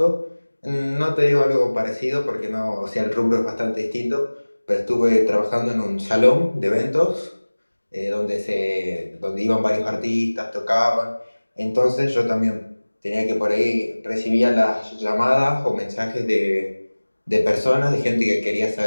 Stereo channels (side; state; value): both; inverted; correlation -1.00